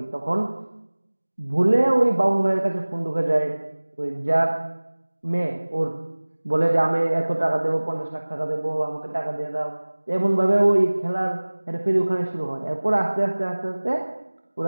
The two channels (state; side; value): inverted; both; correlation -1.00